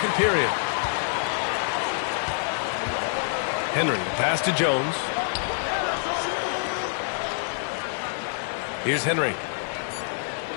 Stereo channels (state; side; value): silent; right; digital silence